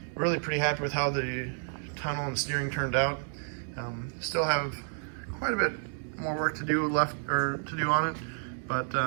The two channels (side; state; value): left; silent; 57 dB below the other